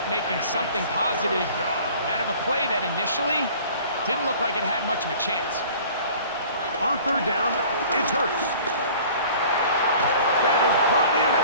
making something positive out of a play that initially didn't look like it had much of a chance. On 3rd down, it's Hurts. That is brought in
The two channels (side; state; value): both; inverted; correlation -0.47